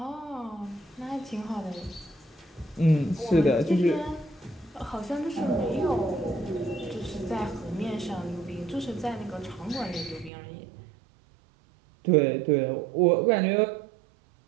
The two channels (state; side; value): drops out; left; at 10.3 s